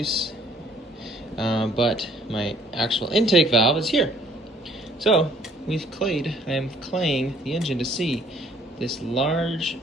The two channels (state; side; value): normal; both; correlation 0.60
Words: but my actual intake valve is here. So I am claying the engine to see this large